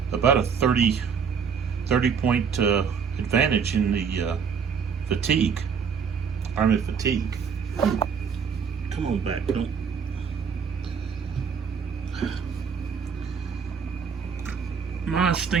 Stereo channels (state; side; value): quieter; left; 6.4 dB